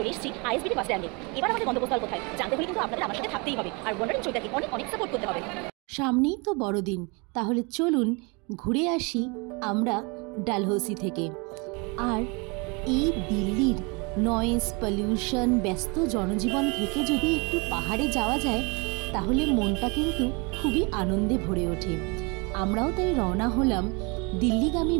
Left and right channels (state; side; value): quieter; left; 30.1 dB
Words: এসেছি আইএসবিটি বাস স্ট্যান্ডে। এবার আমাদের গন্তব্যস্থল কোথায় জানতে হলে কিন্তু আপনাদের আমার সাথে থাকতেই হবে, আর ওয়ান্ডারিং চৈতাকে অনেক অনেক সাপোর্ট করতে হবে। সামনেই তো বড়দিন, তাহলে চলুন ঘুরে আসি আমরা ডালহৌসি থেকে। আর এই দিল্লির নয়েজ, পলিউশন, ব্যস্ত জনজীবন থেকে যদি একটু পাহাড়ে যাওয়া যায় তাহলে মনটা কিন্তু খুবই আনন্দে ভরে ওঠে। আমরাও তাই রওনা হলাম দিল্লিগামী